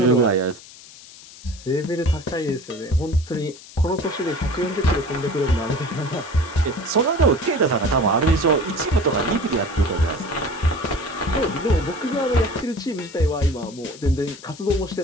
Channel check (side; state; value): left; noise; hiss, 19 dB below the sound